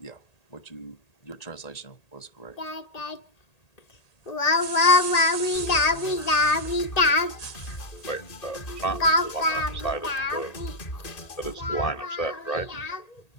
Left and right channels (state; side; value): late; right; 1.8 ms